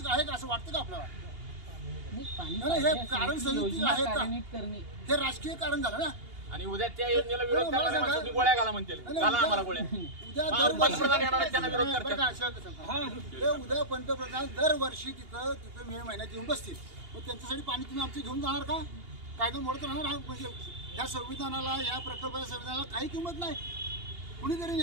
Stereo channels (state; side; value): late; left; 2.8 ms